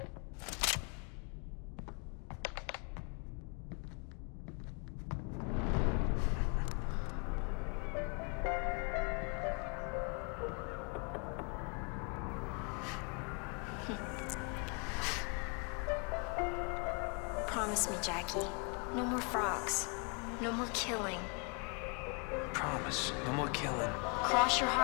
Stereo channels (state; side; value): quieter; right; 35.4 dB